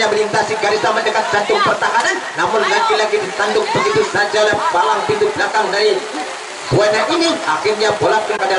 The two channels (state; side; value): identical; both; correlation 1.00